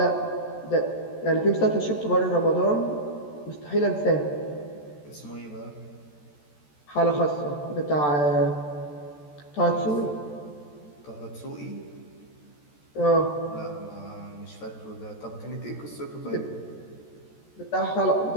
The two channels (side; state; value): right; late; 14 ms